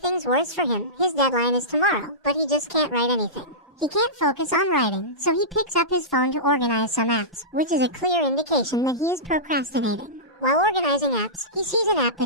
things worse for him, his deadline is tomorrow, but he just can't write anything. He can't focus on writing, so he picks up his phone to organize some apps, which is a clear indication that he is procrastinating. While organizing apps, he sees an app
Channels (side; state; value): both; normal; correlation -0.18